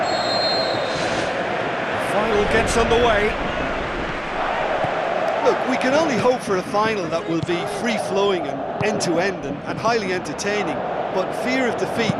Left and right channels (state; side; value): identical; both; correlation 1.00